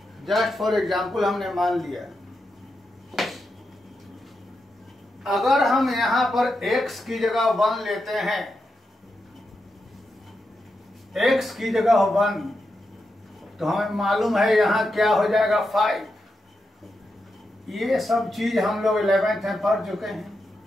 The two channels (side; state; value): both; normal; correlation 0.86